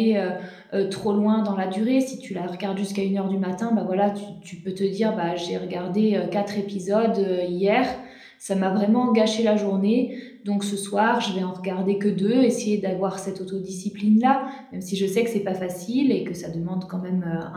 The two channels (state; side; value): identical; both; correlation 1.00